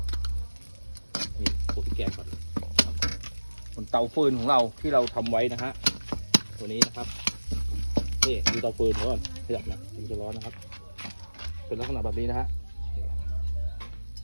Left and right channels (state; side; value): inverted; both; correlation -1.00